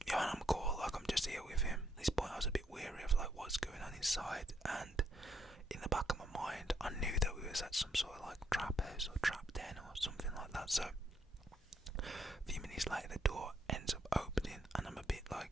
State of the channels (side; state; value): both; normal; correlation 0.74